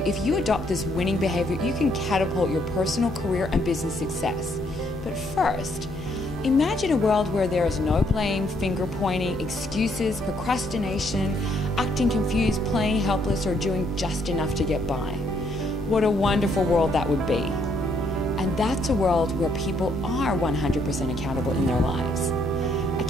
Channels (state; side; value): normal; both; correlation 0.70